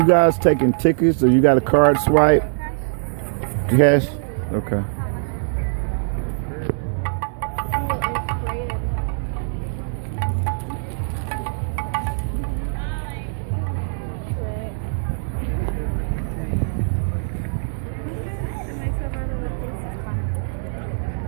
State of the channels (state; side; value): silent; left; 64 dB below the other